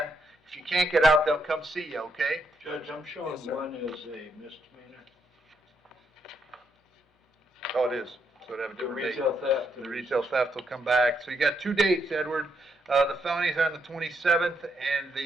If you can't get out, they'll come see you, okay? Judge, I'm showing Yes, sir. one is a misdemeanor. Oh, it is. So it'd have a The different date. retail theft. The retail theft will come back. So you got 2 dates, Edward. The felonies are on the 27th and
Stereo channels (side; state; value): both; normal; correlation 0.77